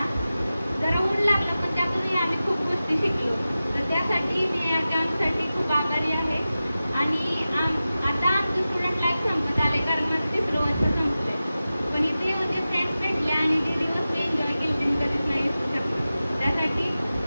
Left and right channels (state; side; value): inverted; both; correlation -0.94